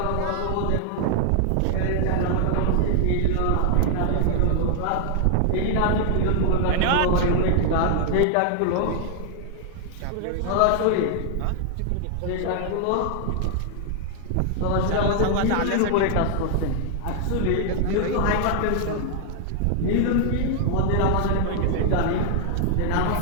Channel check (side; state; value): both; different; correlation 0.00